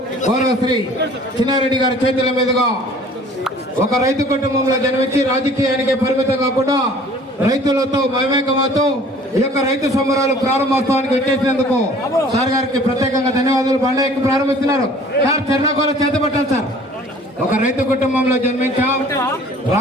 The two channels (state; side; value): normal; both; correlation 0.51